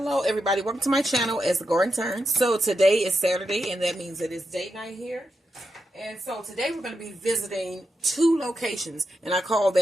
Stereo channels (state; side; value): normal; both; correlation 0.87